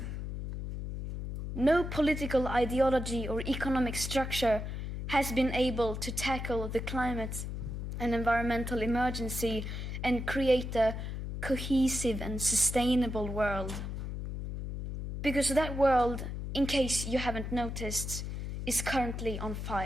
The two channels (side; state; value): left; noise; hum, 5 dB below the sound